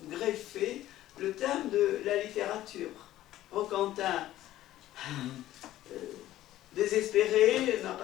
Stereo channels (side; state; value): right; quieter; 14.2 dB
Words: greffé le thème de la littérature. Roquentin, désespéré, n'a